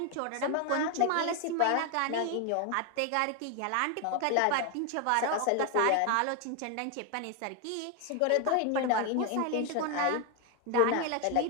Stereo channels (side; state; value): both; different; correlation 0.01